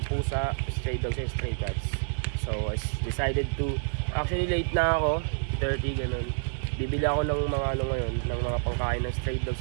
pusa, stray dogs and stray cats. So I decided to, actually late na ako, 30 ganun. Bibili ako ng mga ngayon, ng mga pangkain ng stray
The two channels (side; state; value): left; silent; 59 dB below the other